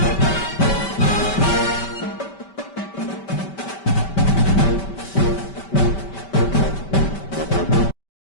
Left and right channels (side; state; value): right; late; 5.2 ms